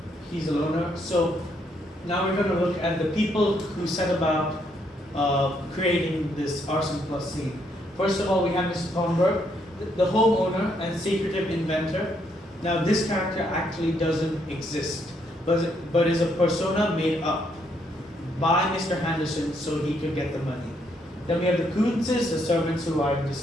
he's a loner. So now we're going to look at the people who set about creating this arson plus scene. First of all, we have Mr. Thornburg, the homeowner and secretive inventor. Now this character actually doesn't exist, but is a persona made up by Mr. Henderson so he could get the money. Then we have the Coonses, the servants who I've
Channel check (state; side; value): normal; both; correlation 0.73